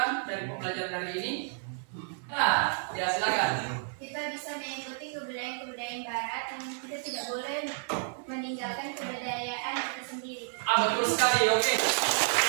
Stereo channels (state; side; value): silent; left; 57 dB below the other